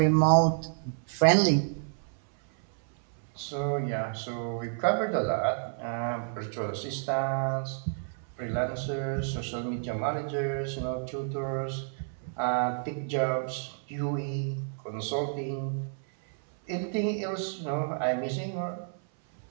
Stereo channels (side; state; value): left; silent; 57 dB below the other